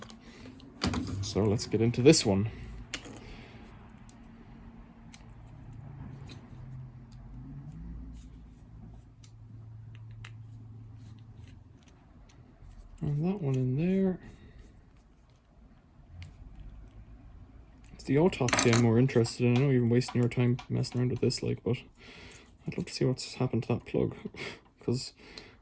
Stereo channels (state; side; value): identical; both; correlation 1.00